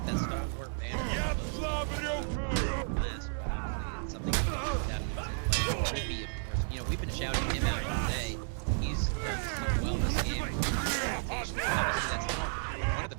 that stalwart banner. It's something that we can put down in his play. Rippy, of course. We've been shouting him out all day. He's done so well this game. Obviously, that's one of the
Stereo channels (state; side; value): silent; left; digital silence